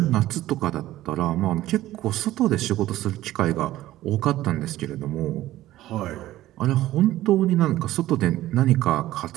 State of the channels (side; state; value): left; quieter; 15.1 dB